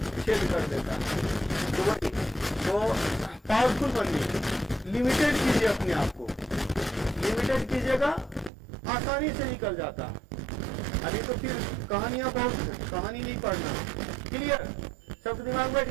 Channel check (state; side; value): drops out; left; at 8.5 s